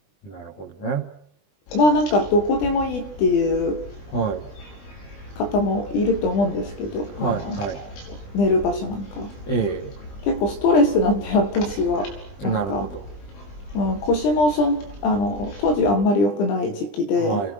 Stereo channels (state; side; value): late; right; 20 ms